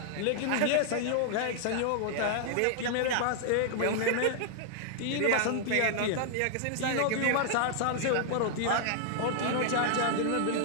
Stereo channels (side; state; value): both; different; correlation 0.00